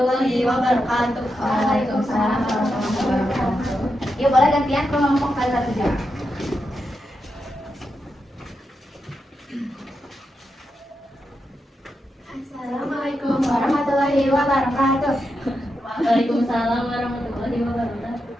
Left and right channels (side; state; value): both; normal; correlation 0.86